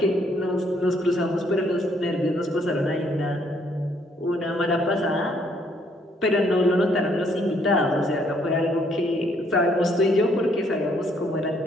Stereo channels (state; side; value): normal; both; correlation 0.68